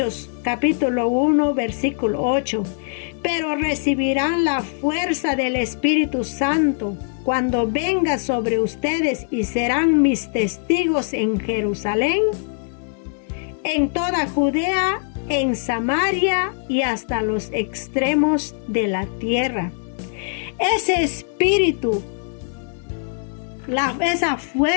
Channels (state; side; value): silent; right; 64 dB below the other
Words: capítulo 1 versículo 8: pero recibirán la fuerza del Espíritu Santo cuando venga sobre ustedes y serán mis testigos en Jerusalén, en toda Judea, en Samaria y hasta los extremos de la tierra. Ese espíritu, esa